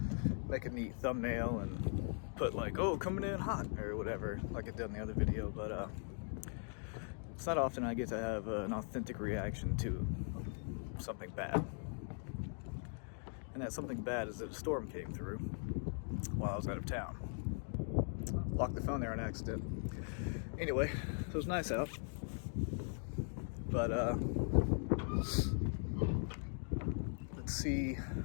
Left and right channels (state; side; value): silent; right; 51 dB below the other